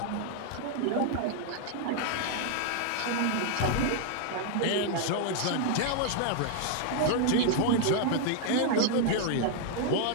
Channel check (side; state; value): both; different; correlation 0.00